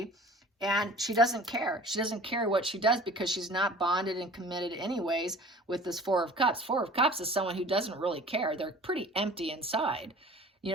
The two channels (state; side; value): normal; both; correlation 0.44